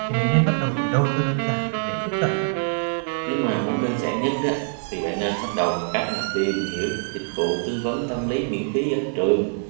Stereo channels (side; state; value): left; silent; digital silence